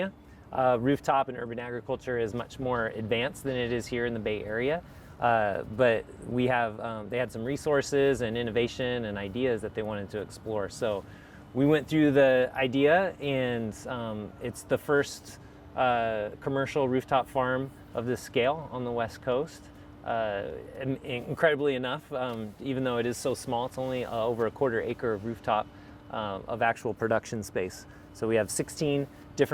rooftop and urban agriculture is much more advanced than it is here in the Bay Area. But we have, they had some resources and innovation and ideas that they wanted to explore. So we went through the idea, and it's the first commercial rooftop farm of this scale on the West Coast. Incredibly enough, even though it is so small, it's only over a quarter acre of rooftop of actual production space. So we have 16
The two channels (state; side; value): identical; both; correlation 1.00